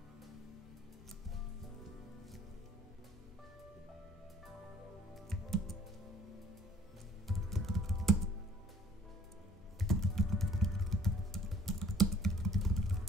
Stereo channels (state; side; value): normal; both; correlation 0.56